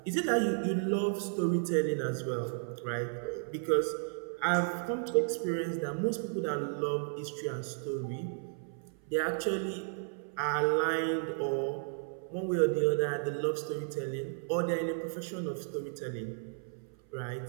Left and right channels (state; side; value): silent; left; 55 dB below the other